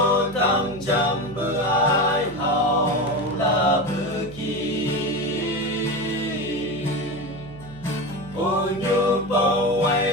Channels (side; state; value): right; noise; hum, 17 dB below the sound